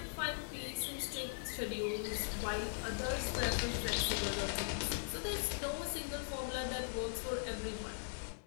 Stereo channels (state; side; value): silent; right; digital silence